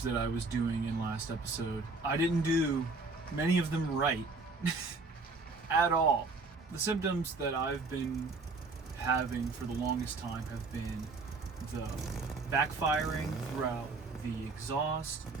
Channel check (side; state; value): left; quieter; 3.8 dB